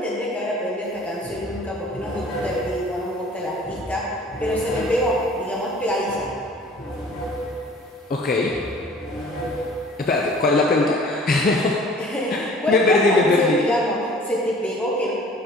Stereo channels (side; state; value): both; normal; correlation 0.49